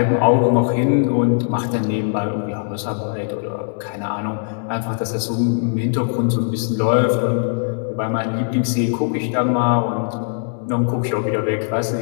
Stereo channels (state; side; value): silent; right; digital silence